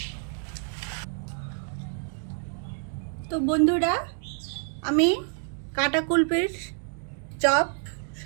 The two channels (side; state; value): left; silent; 56 dB below the other